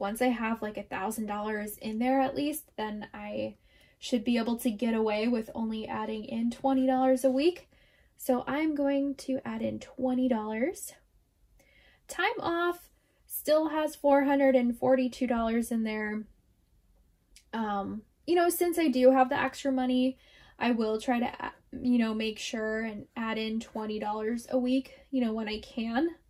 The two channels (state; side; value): identical; both; correlation 1.00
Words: I have like $1,000 in there at least, then I should be able to get away with only adding in $20 a week. So I'm going to add in $20. Time off still has $442 in there. You know, since I do have the extra money, I will try to, you know, make sure and add in $20 a week, you know, when I can.